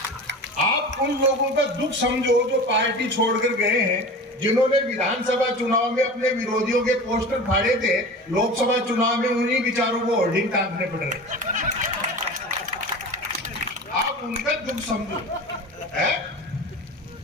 आप उन लोगों का दुख समझो जो पार्टी छोड़कर गए हैं, जिन्होंने विधानसभा चुनाव में अपने विरोधियों के पोस्टर फाड़े थे, लोकसभा चुनाव में उन्हीं विचारों को होर्डिंग टांगने पड़ रहे। आप उनका दुख समझो।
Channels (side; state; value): both; normal; correlation 0.34